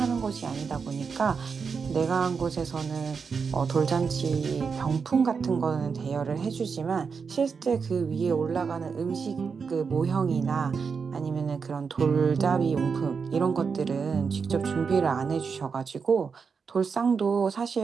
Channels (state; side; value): quieter; left; 5.6 dB